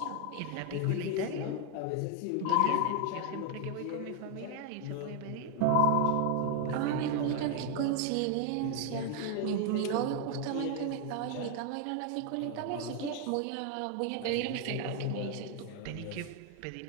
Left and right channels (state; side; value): different; both; correlation 0.01